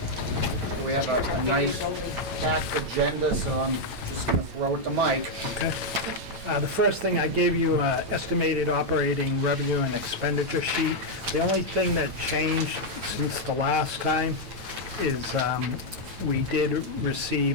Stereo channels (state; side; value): late; left; 9.0 ms